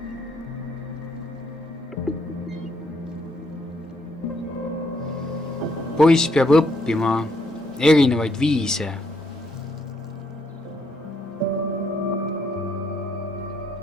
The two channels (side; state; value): both; normal; correlation 0.73